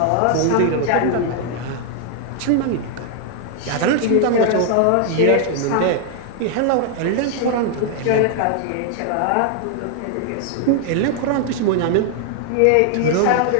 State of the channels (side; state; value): both; different; correlation 0.00